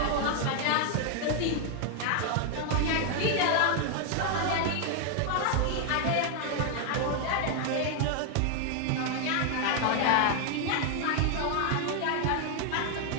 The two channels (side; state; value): both; different; correlation 0.00